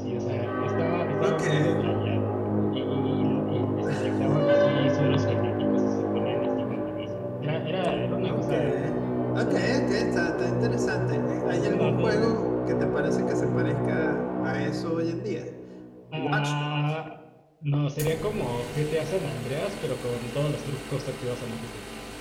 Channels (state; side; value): identical; both; correlation 1.00